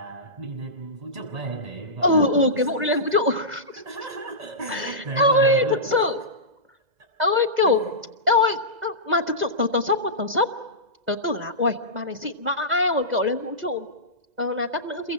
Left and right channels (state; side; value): late; left; 2.0 ms